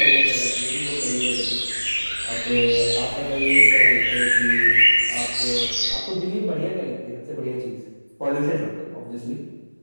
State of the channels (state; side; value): inverted; both; correlation -1.00